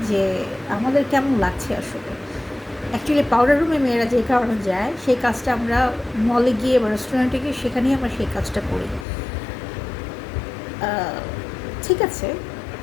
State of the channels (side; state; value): right; drops out; at 9.1 s